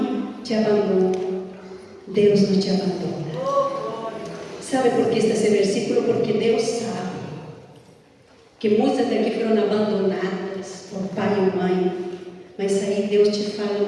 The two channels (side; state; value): both; identical; correlation 1.00